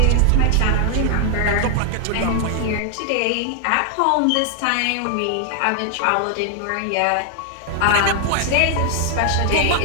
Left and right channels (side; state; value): both; different; correlation 0.00